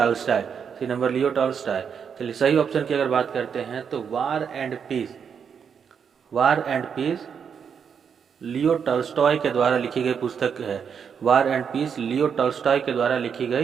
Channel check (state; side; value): quieter; left; 7.0 dB